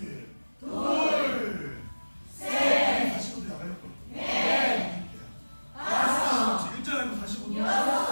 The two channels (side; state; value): both; inverted; correlation -1.00